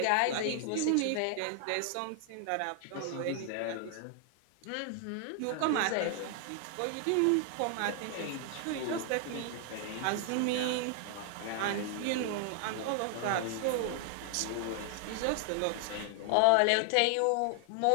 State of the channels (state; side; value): different; both; correlation 0.00